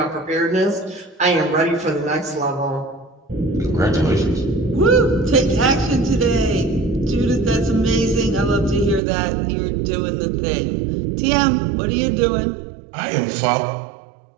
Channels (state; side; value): drops out; left; at 9.0 s